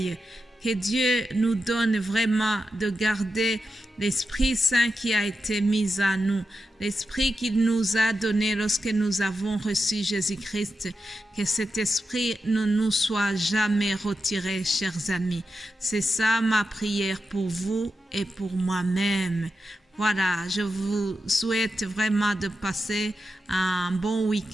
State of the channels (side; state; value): both; normal; correlation 0.89